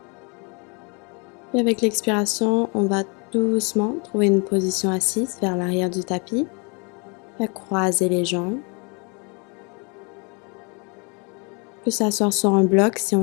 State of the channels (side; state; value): right; quieter; 32.9 dB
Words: Et avec l'expiration, on va doucement trouver une position assise vers l'arrière du tapis. On va croiser les jambes. On peut s'asseoir sur un bloc si